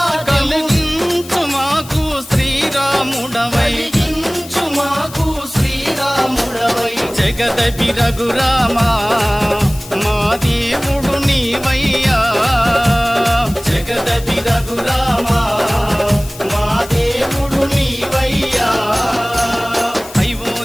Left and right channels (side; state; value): left; noise; hiss, 16 dB below the sound